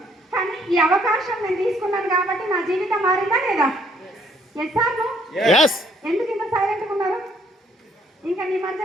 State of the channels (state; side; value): normal; both; correlation 0.65